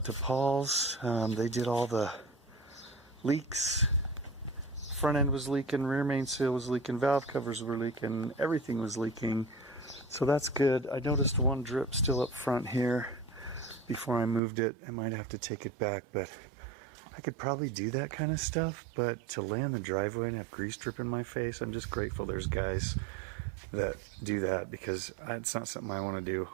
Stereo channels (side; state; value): left; drops out; at 14.4 s